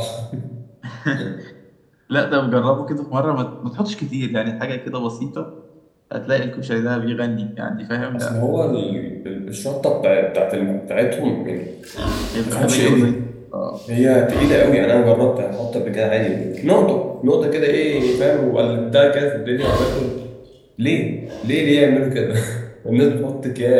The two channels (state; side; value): identical; both; correlation 1.00